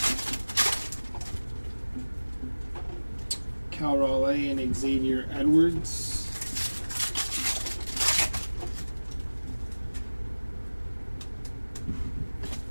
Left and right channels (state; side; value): inverted; both; correlation -1.00